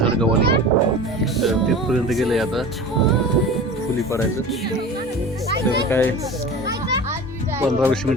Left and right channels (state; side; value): normal; both; correlation 0.35